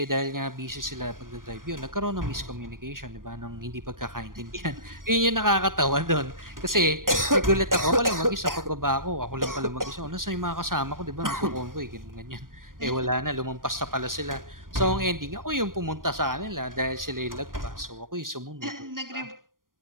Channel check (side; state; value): left; late; 0.91 ms